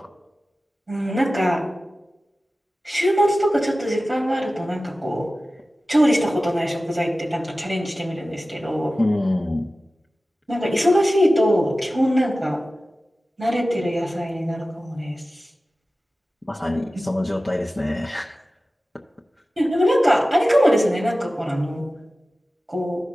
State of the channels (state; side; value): normal; both; correlation 0.96